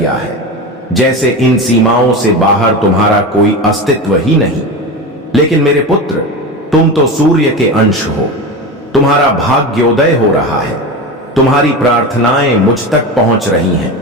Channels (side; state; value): both; normal; correlation 0.24